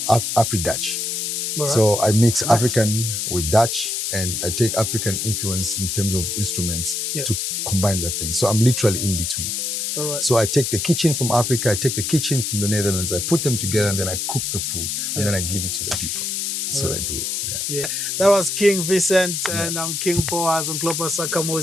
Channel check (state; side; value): noise; left; hiss, 1 dB below the sound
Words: Right. So I mix African with Dutch, and I take African influence in terms of instruments to combine that thing. So I'm literally in between. All right. So I take the kitchen from Africa, I take the kitchen from the Netherlands, I put them together, and then I cook the food, and then I give it to the people. That's what I do. Yeah. That was King Vincent, and I'm King Boaz on Global